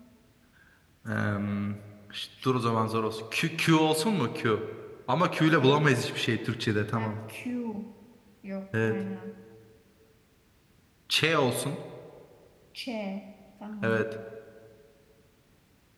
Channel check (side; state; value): both; identical; correlation 1.00